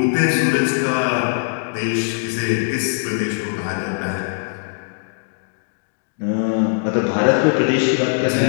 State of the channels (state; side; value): silent; right; digital silence